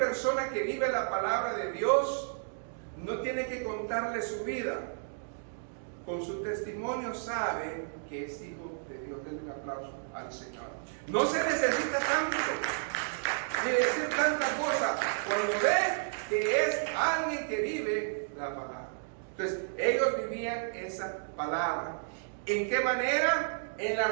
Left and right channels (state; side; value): silent; left; digital silence